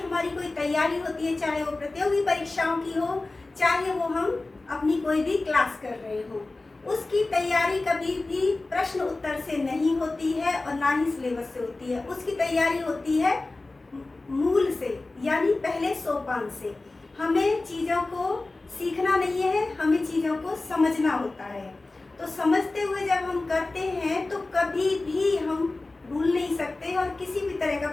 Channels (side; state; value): right; quieter; 3.2 dB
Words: हमारी कोई तैयारी होती है, चाहे वो प्रतियोगी परीक्षाओं की हो, चाहे वो हम अपनी कोई भी क्लास कर रहे हो, उसकी तैयारी कभी भी प्रश्न उत्तर से नहीं होती है और ना ही सिलेबस से होती है। उसकी तैयारी होती है मूल से, यानी पहले सोपान से। हमें चीज़ों को सीखना नहीं है, हमें चीज़ों को समझना होता है। तो समझते हुए जब हम करते हैं तो कभी भी हम भूल नहीं सकते और किसी भी तरह का